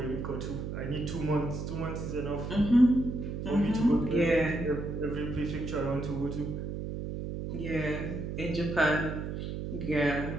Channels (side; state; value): right; noise; hum, 5 dB below the sound